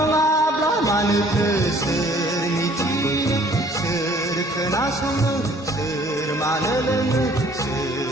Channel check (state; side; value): normal; both; correlation 0.57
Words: मानोथो सोर मिथिनो सोर खोनासंनो सोर मानो लोङो